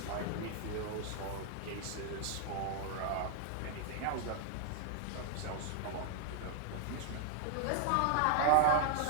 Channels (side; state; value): both; different; correlation 0.00